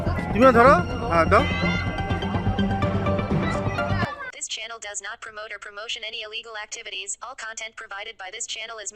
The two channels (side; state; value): both; identical; correlation 1.00